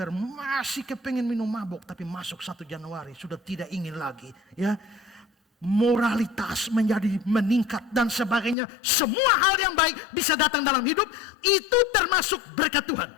masih kepengen minum mabuk, tapi masuk 1 Januari sudah tidak ingin lagi ya. Moralitas menjadi meningkat dan sebagainya. Semua hal yang baik bisa datang dalam hidup. Itu termasuk berkat Tuhan.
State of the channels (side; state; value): right; drops out; at 8.6 s